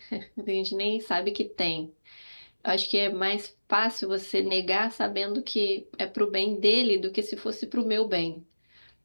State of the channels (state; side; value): inverted; both; correlation -1.00